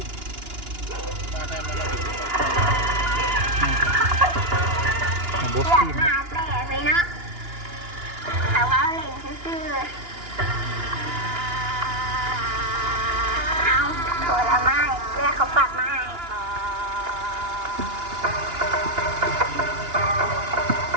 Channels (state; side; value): late; left; 2.9 ms